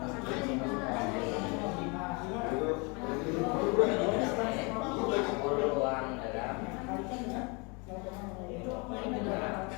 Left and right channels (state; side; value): quieter; right; 30.6 dB